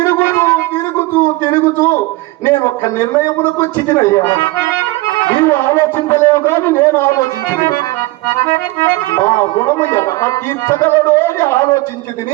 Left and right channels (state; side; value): quieter; left; 20.6 dB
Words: తిరుగుతూ నేను ఒక్క నిర్ణయమునకు వచ్చినయ్యా. నీవు ఆలోచించలేవు కానీ నేను ఆలోచించింది. మా గుణము ఎలా తీర్చగలడో అని